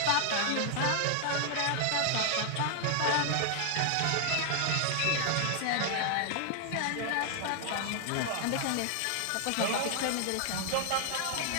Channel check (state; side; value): different; both; correlation 0.00